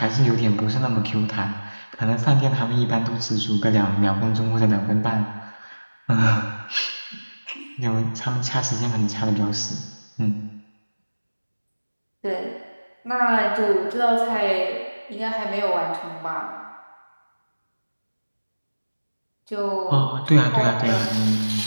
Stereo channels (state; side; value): inverted; both; correlation -1.00